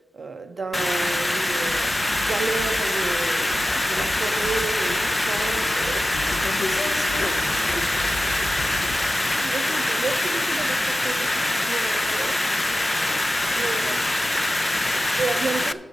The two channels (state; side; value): normal; both; correlation 0.95